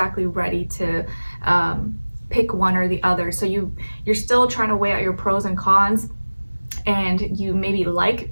ready to pick one or the other. So you're still trying to weigh out your pros and cons, and you maybe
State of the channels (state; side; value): inverted; both; correlation -1.00